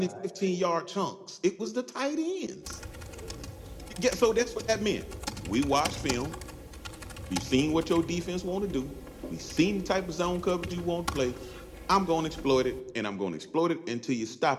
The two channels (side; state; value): both; identical; correlation 1.00